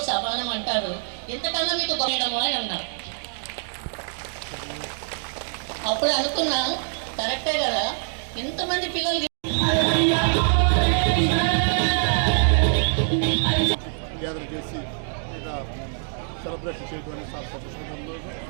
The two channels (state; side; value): silent; left; digital silence